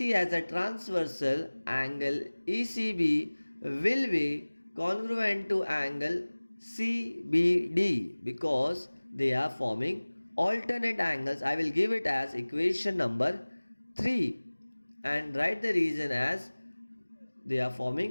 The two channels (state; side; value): inverted; both; correlation -1.00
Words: as a transversal, angle ECB will be congruent to angle CBD because they are forming alternate angles. I will give it as equation number 3 and write the reason as they are